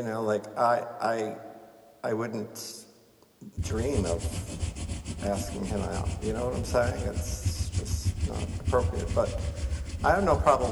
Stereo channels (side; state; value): both; identical; correlation 1.00